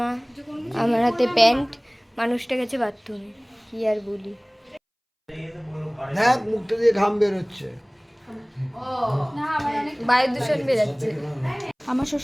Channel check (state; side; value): identical; both; correlation 1.00